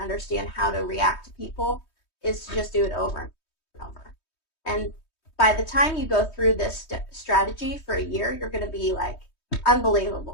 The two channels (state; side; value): late; right; 3.2 ms